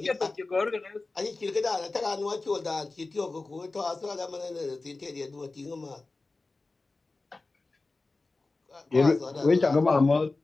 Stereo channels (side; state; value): right; quieter; 3.5 dB